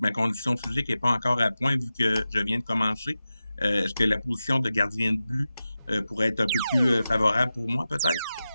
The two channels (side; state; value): both; inverted; correlation -0.93